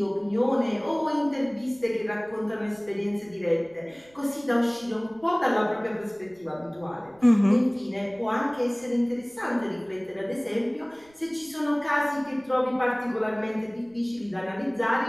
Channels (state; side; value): noise; right; rumble, 29 dB below the sound